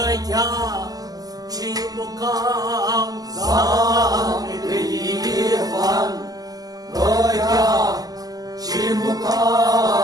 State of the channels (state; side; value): late; left; 0.18 ms